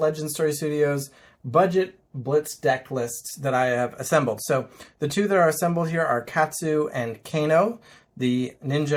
Story Studios budget Blitz deck lists that I have assembled. So the 2 that are assembled here are Katsu and Kano, the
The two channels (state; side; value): identical; both; correlation 1.00